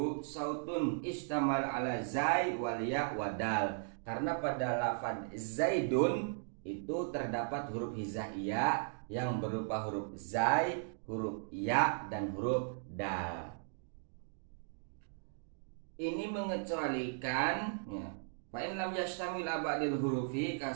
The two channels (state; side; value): silent; left; digital silence